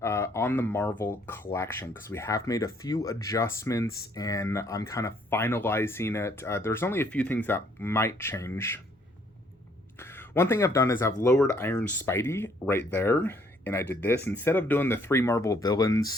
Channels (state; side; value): normal; both; correlation 0.65